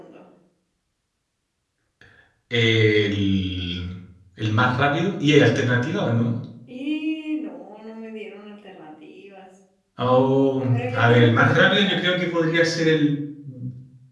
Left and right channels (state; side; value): identical; both; correlation 1.00